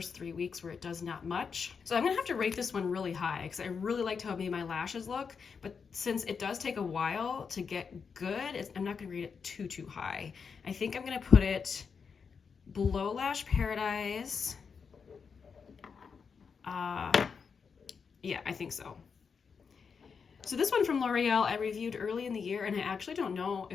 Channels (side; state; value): right; quieter; 5.9 dB